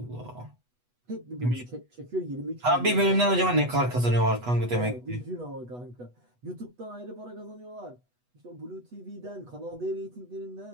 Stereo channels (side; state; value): left; late; 8.1 ms